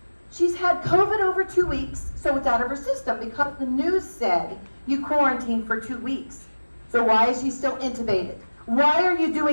she's had COVID over 2 weeks, so it's out of her system because the news said you quarantine for 2 weeks. So why is she still intubated? Why are you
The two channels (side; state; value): both; inverted; correlation -1.00